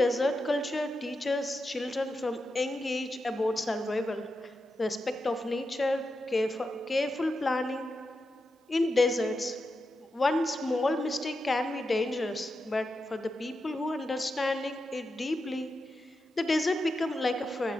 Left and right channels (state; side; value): normal; both; correlation 0.88